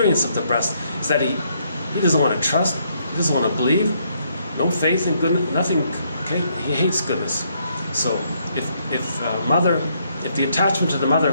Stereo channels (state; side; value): inverted; both; correlation -0.72